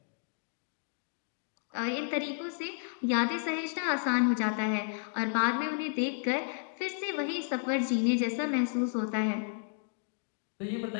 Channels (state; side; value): silent; right; 56 dB below the other